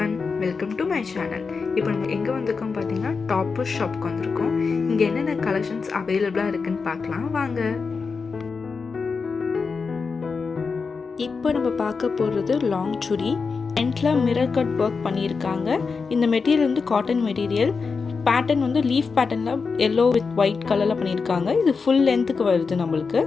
welcome to my channel. இப்போ நம்ம எங்கே வந்திருக்கோம் பார்த்தீங்கன்னா டாப்பர் ஷாப்க்கு வந்திருக்கோம். இங்கே என்னென்ன கலெக்ஷன்ஸ் அவைலபிளாக இருக்குன்னு பார்க்கலாம் வாங்க. இப்போ நம்ம பார்க்க போகிறது லாங் சுடி. எண்டில் மிரர் கட் ஒர்க் பண்ணியிருக்காங்க. இந்த மெட்டீரியல் வந்து காட்டன் மெட்டீரியல். பேட்டர்ன் வந்து லீஃப் பேட்டர்னில் எல்லோ வித் ஒயிட் கலரில் பண்ணியிருக்காங்க. இது ஃபுல் லென்த்துக்கு வருது நம்மளுக்கு.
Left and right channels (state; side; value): quieter; right; 4.9 dB